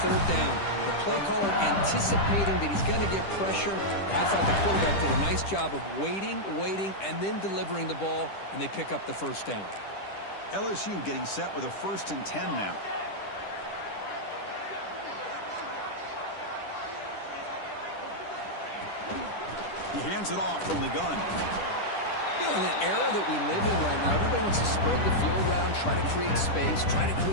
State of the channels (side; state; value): right; late; 10 ms